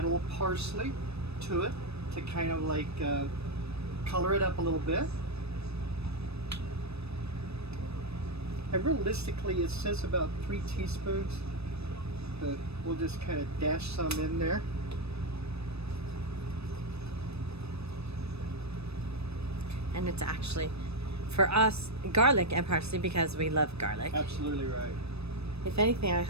a little parsley to it to kind of like color it up a little bit. And realistically, it says about 3 teaspoons. But we'll just kind of dash some in there. And it's actually, for us, garlic and parsley because we love garlic. Absolutely right. If anything, I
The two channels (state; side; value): late; left; 0.79 ms